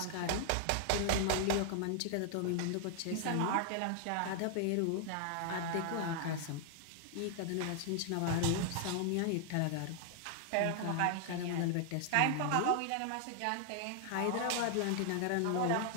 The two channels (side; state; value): both; different; correlation 0.00